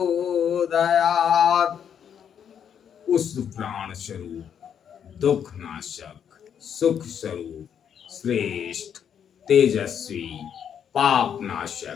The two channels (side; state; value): right; quieter; 8.4 dB